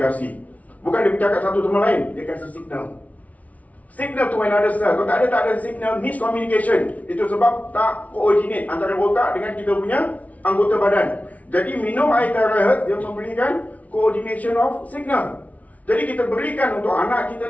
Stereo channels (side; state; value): right; late; 0.069 ms